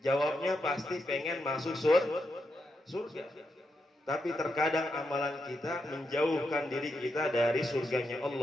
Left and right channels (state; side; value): normal; both; correlation 0.84